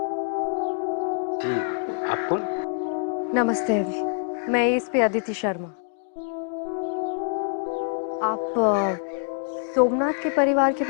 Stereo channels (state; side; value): silent; right; 57 dB below the other